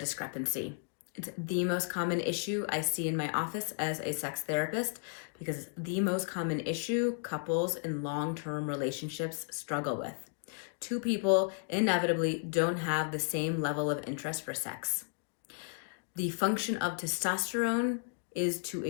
It's the most common issue I see in my office as a sex therapist because it's the most common issue couples in long-term relationships struggle with. Two people inevitably don't have the same level of interest for sex. The function of testosterone is to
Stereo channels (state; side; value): silent; right; 55 dB below the other